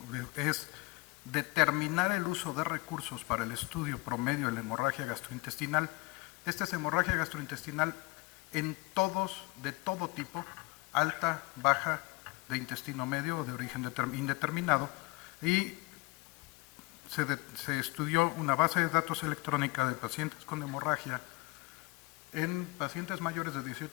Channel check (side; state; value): right; quieter; 23.9 dB